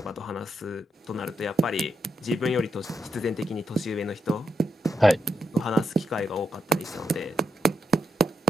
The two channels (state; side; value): normal; both; correlation 0.83